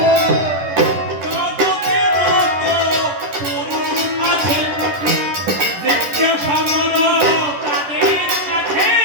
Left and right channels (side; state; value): left; late; 11 ms